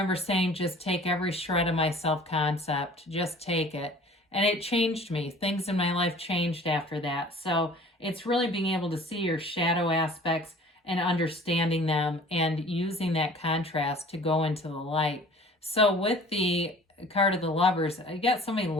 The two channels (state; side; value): normal; both; correlation 0.47